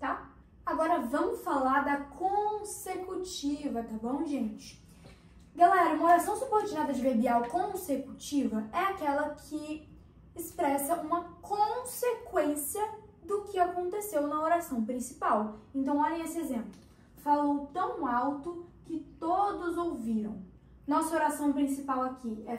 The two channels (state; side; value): identical; both; correlation 1.00